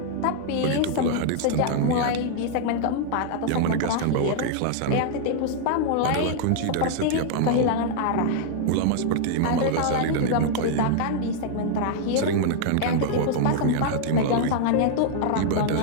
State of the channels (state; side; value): different; both; correlation -0.01